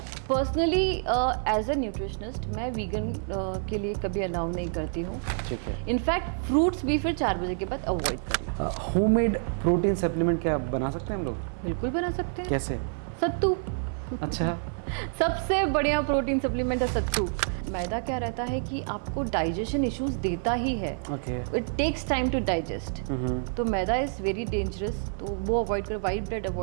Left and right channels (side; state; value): left; silent; 59 dB below the other